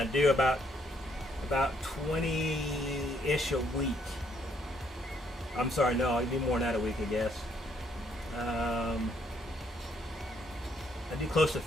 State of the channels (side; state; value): both; normal; correlation 0.70